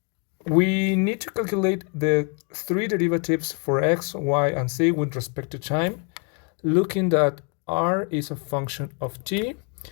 we need to calculate the three derivatives for x, y, and z with respect to time, looking that r is a function of t,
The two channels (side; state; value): right; quieter; 37.3 dB